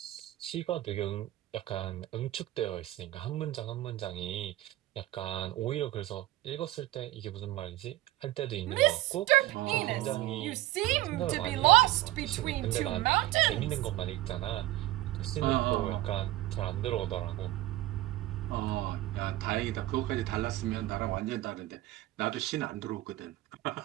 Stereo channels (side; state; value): left; quieter; 16.5 dB